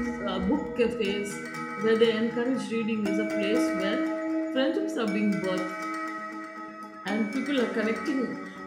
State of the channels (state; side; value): identical; both; correlation 1.00